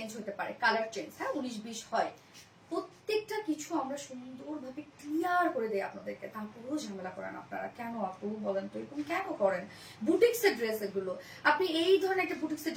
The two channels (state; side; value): identical; both; correlation 1.00